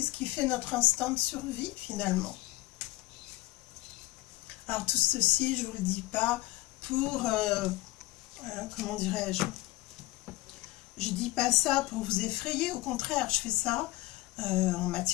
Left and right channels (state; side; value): quieter; right; 19.4 dB